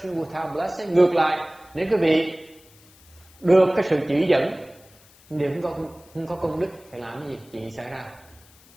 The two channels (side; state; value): left; noise; hiss, 27 dB below the sound